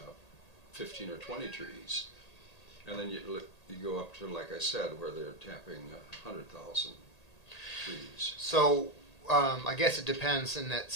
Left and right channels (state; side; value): late; right; 1.8 ms